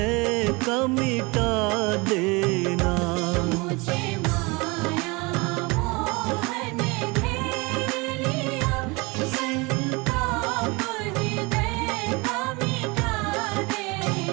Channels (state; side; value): quieter; left; 26.1 dB